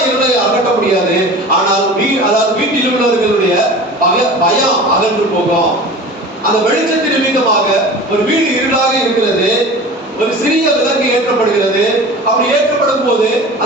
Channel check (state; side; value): normal; both; correlation 0.37